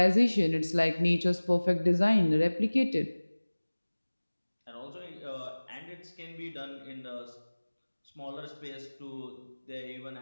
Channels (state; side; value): inverted; both; correlation -1.00